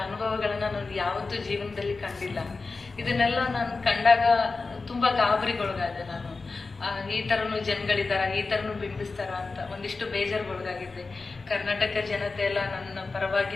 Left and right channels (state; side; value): quieter; right; 4.0 dB